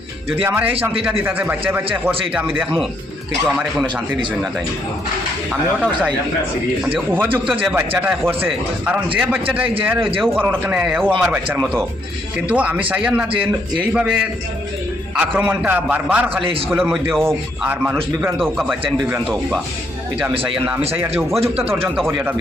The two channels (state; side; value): normal; both; correlation 0.73